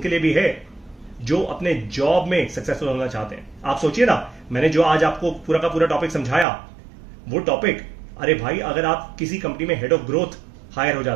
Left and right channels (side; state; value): left; drops out; at 6.5 s